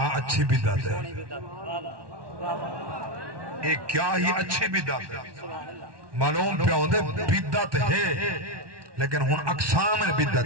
اچھی بدعت ہے ایک کیا ہی اچھی بدعت ہے معلوم پہ ہوندے بدعت ہے لیکن ہن اقسام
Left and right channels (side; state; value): left; late; 1.2 ms